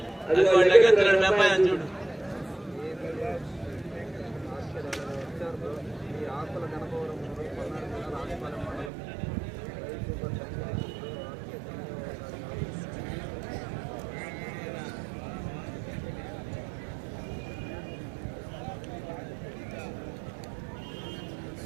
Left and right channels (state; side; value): drops out; left; at 8.9 s